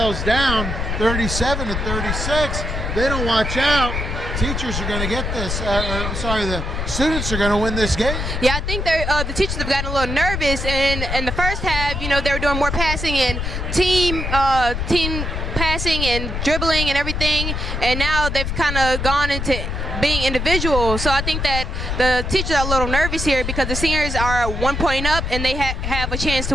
down 37-36. They don't watch out. Teachers are going to get this. The students are going to win this game. Yeah, I think the teachers have gotten a little nervous in the first half. They were doing more passing and team passing and dribbling and everything, and now they've kind of gone into being individual. So I think that the teachers are a little nervous here because the seniors are 1 point up and they have a chance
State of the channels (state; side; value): noise; left; rumble, 3 dB below the sound